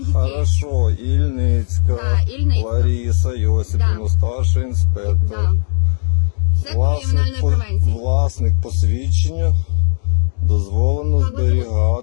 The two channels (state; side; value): silent; right; digital silence